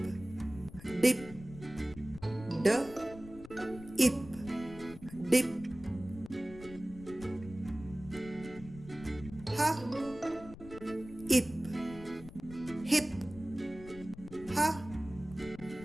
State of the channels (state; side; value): noise; left; rumble, 16 dB below the sound